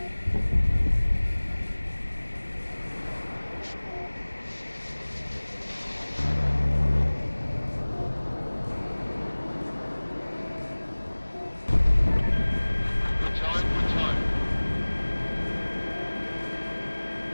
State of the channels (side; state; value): both; inverted; correlation -1.00